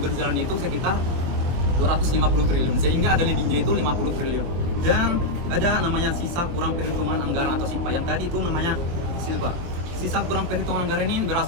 berjalan itu sekitar 250 triliun, sehingga ada lebihnya itu 50 triliun. Dan ada namanya sisa kurang perhitungan anggaran atau SIPA, yang tadi itu namanya SILPA. Sisa kurang perhitungan anggaran ini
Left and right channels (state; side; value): late; left; 23 ms